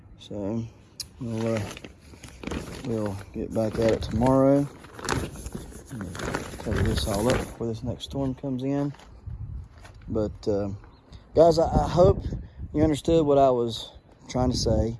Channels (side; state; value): both; identical; correlation 1.00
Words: So we'll get back at it tomorrow. Cover this all up before this next storm comes in. But guys, I hope you understood what I was trying to say